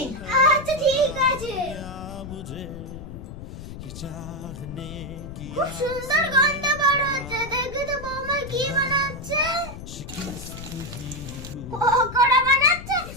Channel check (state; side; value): noise; left; rumble, 11 dB below the sound